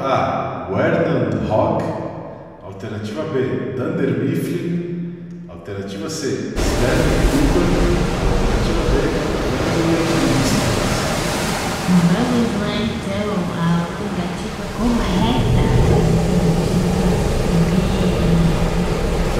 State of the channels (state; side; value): identical; both; correlation 1.00